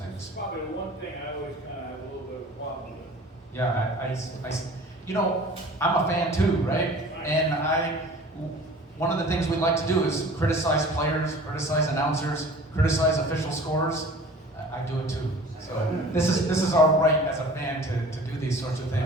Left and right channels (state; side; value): normal; both; correlation 0.44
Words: Probably the one thing I always kind of have a little bit of a problem with. Yeah, I'm a fan too, right? And one of the things we like to do is criticize players, criticize announcers, criticize official scorers. I do it too. So this is our right as a fan to do these sorts of